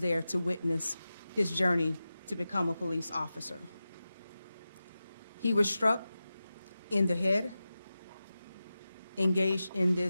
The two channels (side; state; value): both; inverted; correlation -0.94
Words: to witness his journey to become a police officer. He was struck in the head, engaged in